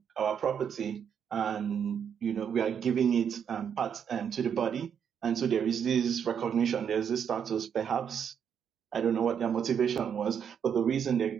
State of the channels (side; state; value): left; quieter; 7.9 dB